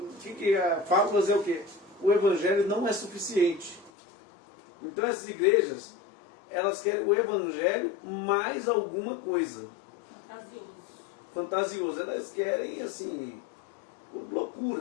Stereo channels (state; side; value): drops out; right; at 3.9 s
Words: que é fábulas é o quê? O evangelho não é suficiente. Então essas igrejas, elas querem o evangelho mais alguma coisa. Fantasioso. Elas querem, assim,